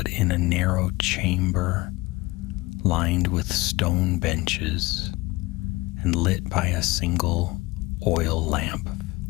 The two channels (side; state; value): right; quieter; 21.6 dB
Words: in a narrow chamber lined with stone benches and lit by a single oil lamp.